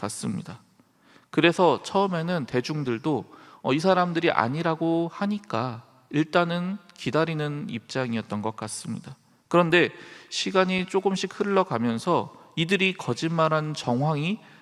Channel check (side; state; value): both; identical; correlation 1.00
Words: 그래서 처음에는 대중들도 이 사람들이 아니라고 하니까 일단은 기다리는 입장이었던 것 같습니다. 그런데 시간이 조금씩 흘러가면서 이들이 거짓말한 정황이